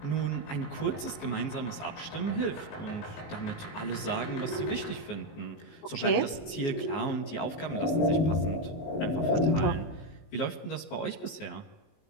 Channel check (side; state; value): right; late; 19 ms